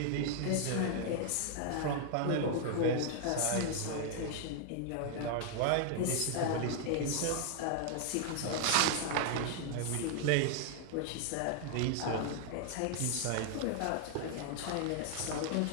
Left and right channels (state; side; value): different; both; correlation 0.00